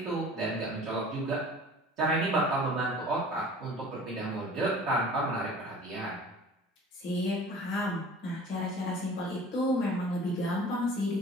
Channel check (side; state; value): both; normal; correlation 0.45